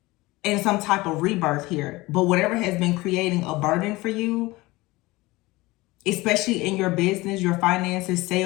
and some type of rebirth here. But whatever has been creating a burden for you, especially in your business, your finances,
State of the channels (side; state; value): right; quieter; 20.9 dB